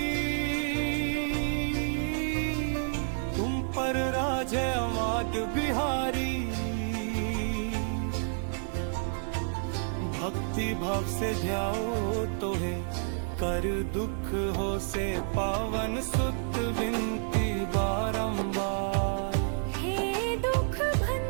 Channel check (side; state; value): left; silent; digital silence